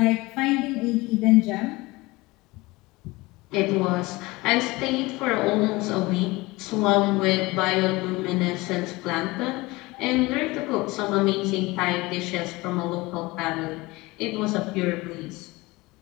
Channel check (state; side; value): quieter; right; 22.0 dB